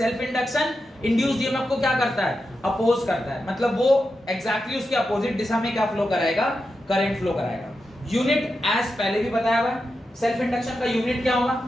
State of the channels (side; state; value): both; normal; correlation 0.89